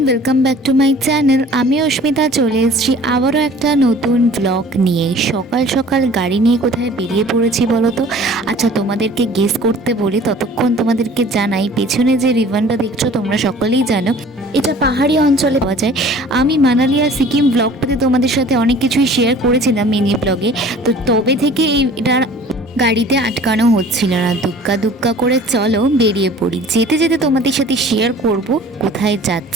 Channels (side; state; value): both; normal; correlation 0.48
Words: Welcome back to my channel. আমি অস্মিতা চলে এসেছি আবারও একটা নতুন ব্লগ নিয়ে। সকাল সকাল গাড়ি নিয়ে কোথায় বেরিয়ে পড়েছি বলো তো। আচ্ছা, তোমাদেরকে গেস করতে বলি, ততক্ষণ তোমাদেরকে জানাই পেছনে যে রিভানটা দেখছো তোমরা সকলেই জানো এটা পাহাড়ি অঞ্চলে পাওয়া যায়। আমি মানালি আর সিকিম ব্লগটাতে তোমাদের সাথে অনেক কিছুই শেয়ার করেছিলাম মিনি ব্লগে। তো তবে থেকে এটার গাড়িতে আটকানো হচ্ছিল না। দুক্কা দুক্কা করে চলো বেরিয়ে পড়ি। যেতে যেতে তোমাদের সাথে শেয়ার করব কোথায়